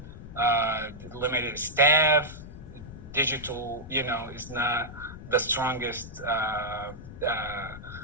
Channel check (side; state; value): left; noise; rumble, 14 dB below the sound